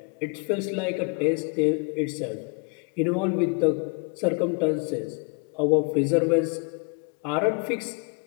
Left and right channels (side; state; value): right; quieter; 35.6 dB